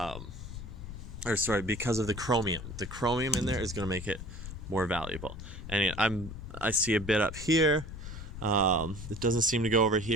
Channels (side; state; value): left; noise; rumble, 10 dB below the sound